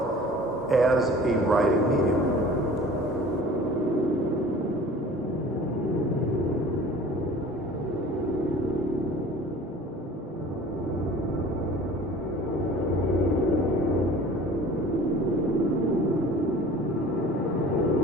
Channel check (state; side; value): normal; both; correlation 0.45